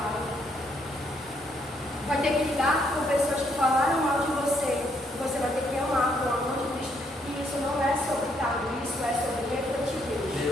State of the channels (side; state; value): both; normal; correlation 0.72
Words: Vai ter que lidar com pessoas que falaram mal de você. Você vai ter que amar com o amor de Cristo. E isso não é sobre cargo, isso é sobre refletir